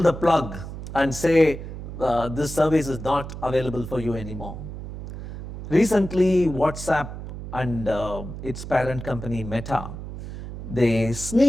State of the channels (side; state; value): right; noise; hum, 10 dB below the sound